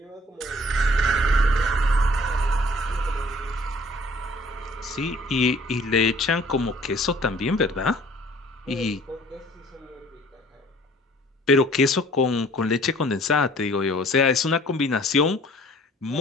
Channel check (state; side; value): normal; both; correlation 0.54